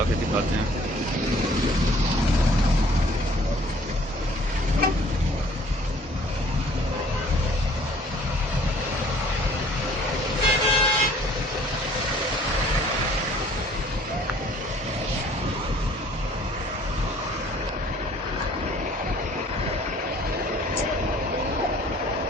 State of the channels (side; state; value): both; normal; correlation 0.55